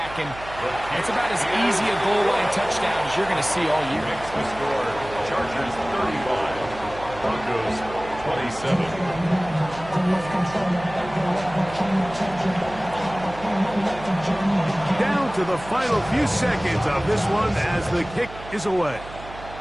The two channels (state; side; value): noise; right; hum, 15 dB below the sound